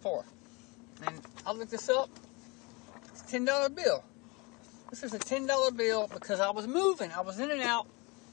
And I looked this up. It's a $10 bill. This is a $10 bill because I was moving. I was in and out.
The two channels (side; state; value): right; quieter; 27.4 dB